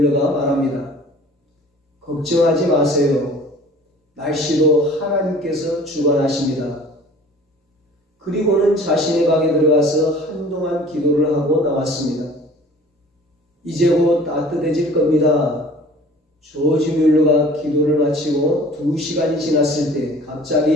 말합니다. 걱정하지 마세요. 날씨도 하나님께서 주관하십니다. 그리고는 자신의 방에 들어가서 한동안 기도를 하고 나왔습니다. 이제 곧 따뜻해질 겁니다. 조지 뮬러가 기도를 마치고 2시간이 지났을 때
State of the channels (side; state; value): both; normal; correlation 0.48